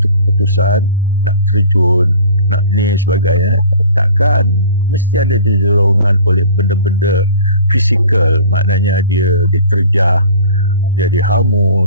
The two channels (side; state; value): both; inverted; correlation -0.44